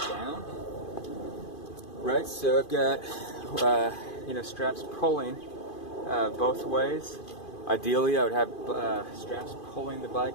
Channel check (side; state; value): right; late; 2.5 ms